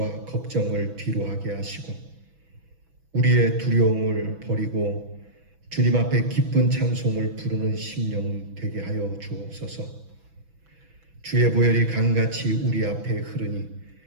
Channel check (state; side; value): late; left; 6.1 ms